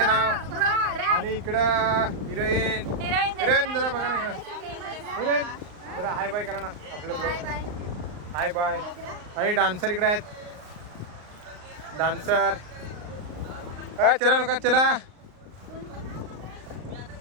नाव. आणि इकडं हिरोईन हिरोईन जरा बघा ना इकडं हिरोईन जरा हाय बाय करा ना आपलं ब्लॉग. Hi bye. आणि डान्सर इकडे आहेत डान्सर. चला लोक चला.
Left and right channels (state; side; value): late; left; 39 ms